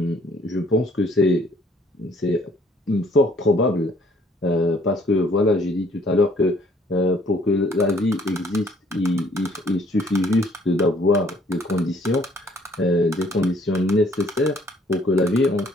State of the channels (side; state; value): both; normal; correlation 0.62